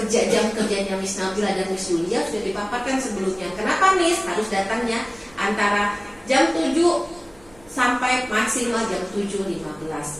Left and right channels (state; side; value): noise; right; rumble, 27 dB below the sound